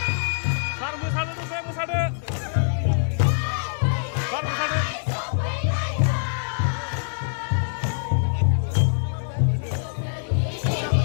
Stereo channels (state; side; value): silent; right; digital silence